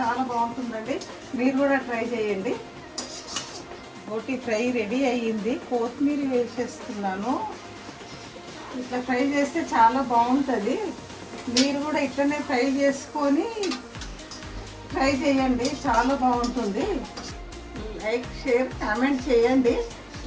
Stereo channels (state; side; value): identical; both; correlation 1.00